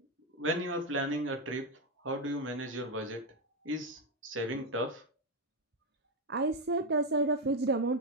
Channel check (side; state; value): both; normal; correlation 0.06